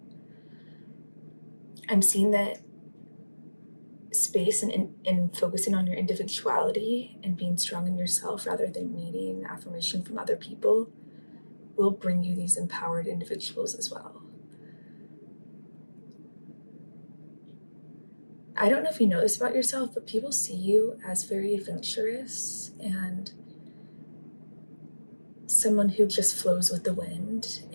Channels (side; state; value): both; inverted; correlation -1.00